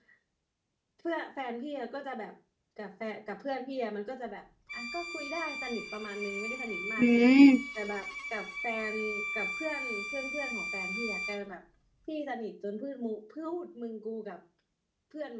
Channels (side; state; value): both; identical; correlation 1.00